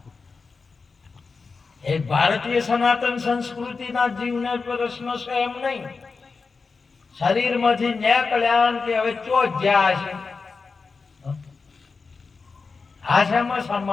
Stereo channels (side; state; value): right; quieter; 4.6 dB